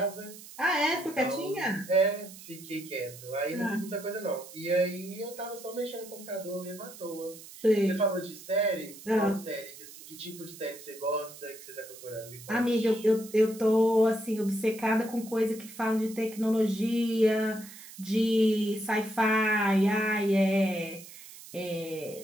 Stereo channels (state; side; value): noise; right; hiss, 17 dB below the sound